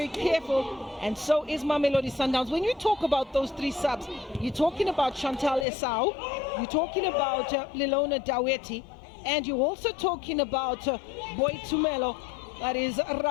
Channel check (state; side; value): drops out; right; at 5.7 s